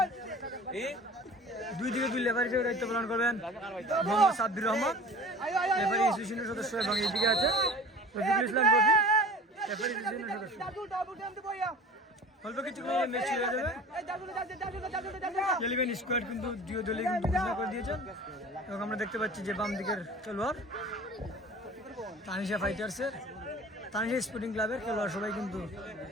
দুই দিকে 2 রেফারি হিসেবে দায়িত্ব পালন করবেন মোহাম্মদ সাব্বির রহমান, রেফারি অ্যাসোসিয়েশনের সদস্য, এবং এইদিকে আছে রফিকুল ইসলাম রফি, রেফারি অ্যাসোসিয়েশনের সদস্য। অল্প কিছুক্ষণ ম্যাচ শুরু হয়ে যাবে। 11 স্কোয়াড কিন্তু দুই দলই কিন্তু ঘোষণা করে দিয়েছেন এবং আমরা দেখতে পাচ্ছি যে বাম দিকের খেলোয়াড় তানিশা ফাইটার্সের, তানিশা স্পোর্টিং ক্লাবের খেলোয়াড় সবাই কিন্তু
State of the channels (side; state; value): both; normal; correlation 0.41